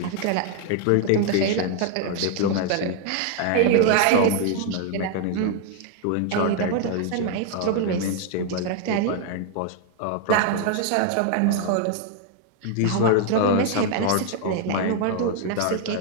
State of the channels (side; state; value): both; different; correlation 0.00